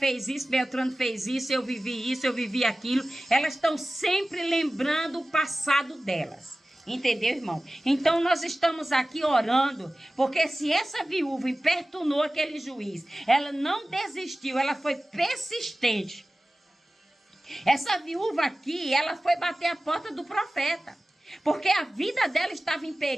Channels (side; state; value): both; normal; correlation 0.96